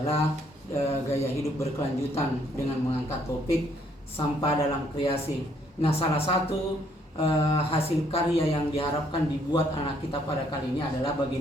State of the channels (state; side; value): normal; both; correlation 0.68